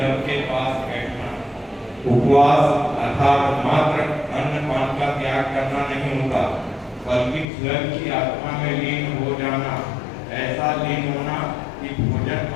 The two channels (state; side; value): drops out; right; at 7.5 s